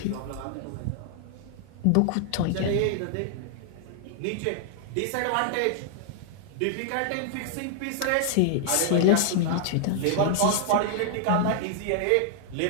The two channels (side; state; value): both; different; correlation -0.01